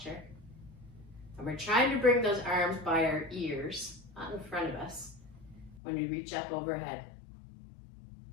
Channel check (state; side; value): drops out; right; at 5.8 s